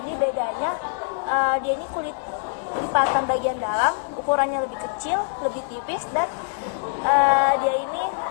bedanya dia ini kulit lipatan bagian dalam, ukurannya lebih kecil, lebih tipis, dan dia ini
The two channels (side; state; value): right; silent; digital silence